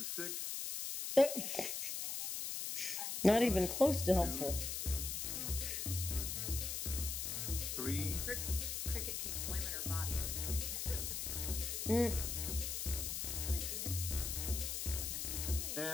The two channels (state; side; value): noise; left; hiss, 2 dB below the sound